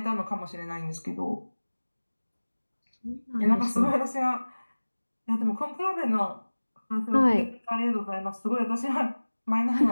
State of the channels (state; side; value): inverted; both; correlation -1.00